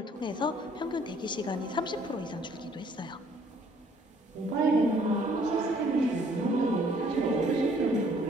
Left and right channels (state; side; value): normal; both; correlation 0.61